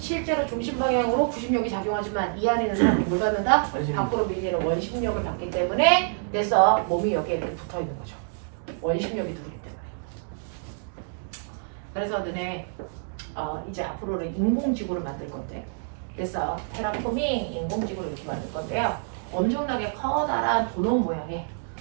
중심 방향으로 구심력이 작용하지만 이 안에 있는 사람은 뭘 받는다? 밖으로 밀리는 원심력을 받기 때문에 그래서 몸이 여기에 이렇게 붙어 있는 거죠. 원심력이 들어오기 때문에. 그래서 너네 이제 앞으로는 인공지구를 만들 건데, 그래서 테라폼이 인공지구를 이렇게 만들 건데요. 엄청나게 커다란 도넛 모양의,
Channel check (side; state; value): left; silent; digital silence